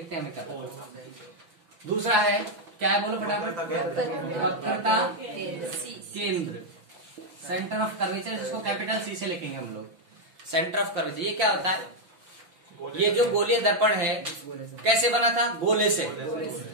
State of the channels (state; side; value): late; left; 6.0 ms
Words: हैं हमें क्या पता। दूसरा है क्या है, बोलो फटाफट, वक्रता केंद्र, सेंटर ऑफ कर्वेचर, जिसको कैपिटल सी से लिखेंगे हम लोग, सेंटर ऑफ कर्वेचर। ये क्या होता है, ये जो गोलीय दर्पण है कैसे बना था, गोले से,